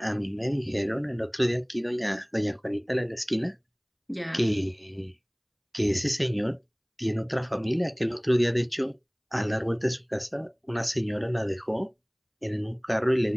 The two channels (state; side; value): identical; both; correlation 1.00